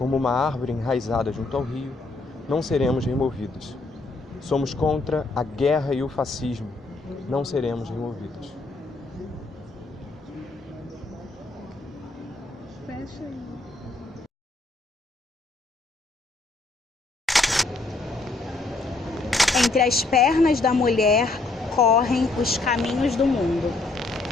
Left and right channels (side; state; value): right; quieter; 3.3 dB